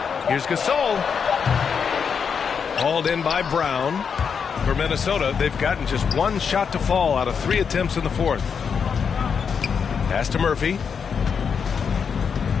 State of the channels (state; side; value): quieter; right; 6.5 dB